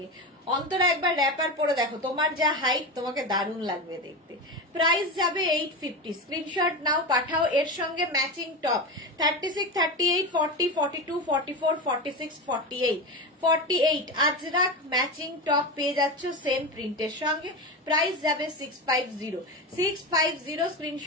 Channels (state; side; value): normal; both; correlation 0.21